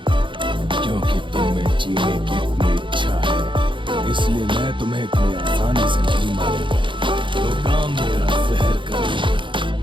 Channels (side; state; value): left; late; 0.24 ms